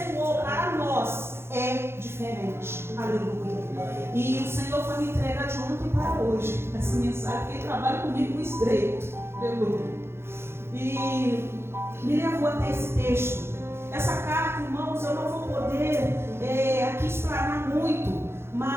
para nós, é diferente. Aleluia. E o Senhor foi me entregar de ontem para hoje essa mensagem, porque Ele trabalha comigo no estreito. Aleluia. E me levou até esse texto. Essa carta, irmãos, eu não vou poder aqui explanar muito,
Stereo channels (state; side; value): late; left; 0.12 ms